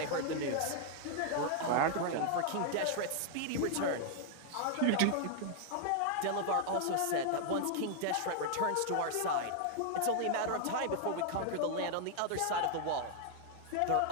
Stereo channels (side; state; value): both; different; correlation 0.00